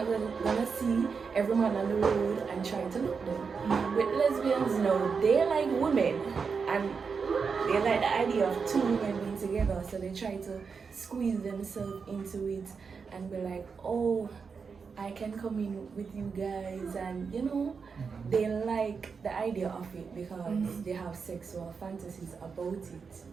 gonna see every man on the road and try to look them. With lesbians, no, they like women, and they like the idea of two women being together. So they try to squeeze themselves into it and be like, oh, I can come in with you guys, and they like the idea of it because they have sexual fantasies about it.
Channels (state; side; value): quieter; left; 5.5 dB